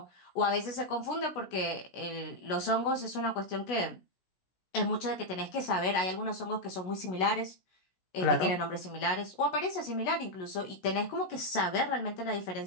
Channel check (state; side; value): late; right; 16 ms